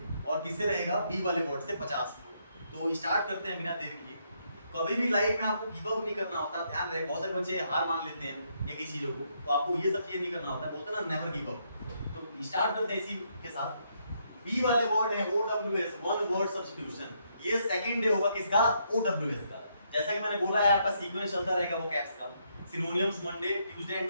और किससे रहेगा? B वाले word से 50 word. तो स्टार्ट करते हैं बिना देर किए। कभी भी लाइफ में आपको गिव अप नहीं करना होता, ध्यान रहे। बहुत सारे बच्चे हार मान लेते हैं या किसी चीजों को, तो आपको ये सब चीजें नहीं करना होता है। बोलते हैं ना, नेवर गिव अप। तो स्टार्ट करते हैं इसी के साथ। बी वाले वर्ड है OWS, वन वर्ड सब्स्टिट्यूशन। ये सेकंड डे होगा किसका? OWS का। जैसा कि मैंने बोला है, आपका सीक्वेंस चलता रहेगा वो कैप्स का। Synonyms Monday, Tuesday,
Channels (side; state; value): both; inverted; correlation -0.75